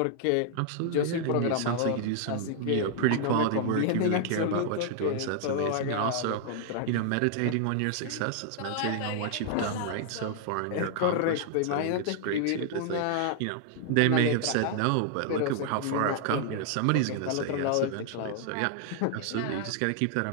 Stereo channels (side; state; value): both; different; correlation 0.00